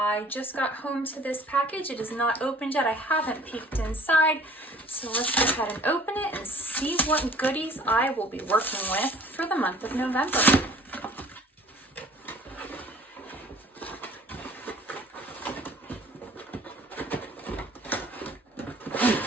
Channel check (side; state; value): both; normal; correlation 0.51